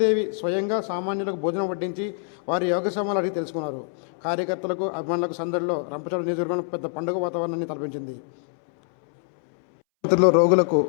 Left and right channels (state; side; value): silent; right; 62 dB below the other